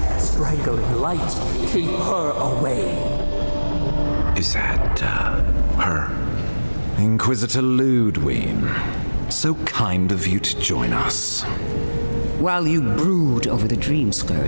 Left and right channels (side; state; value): both; inverted; correlation -1.00